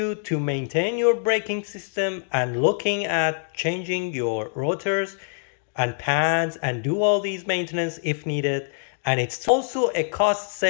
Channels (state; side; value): silent; right; digital silence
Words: to maintain your braking system and looking at changing your rotors and pads and do all these maintenance if needed. And it's also a cost